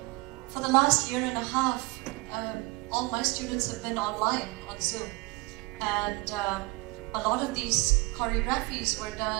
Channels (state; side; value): quieter; left; 23.7 dB